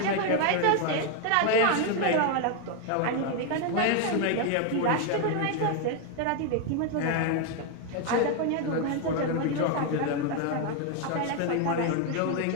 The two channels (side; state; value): both; different; correlation 0.01